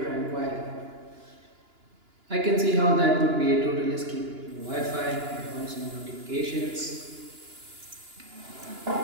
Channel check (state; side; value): late; left; 2.9 ms